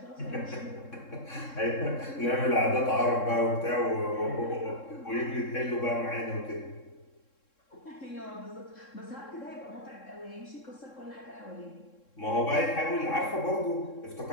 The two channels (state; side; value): late; right; 3.7 ms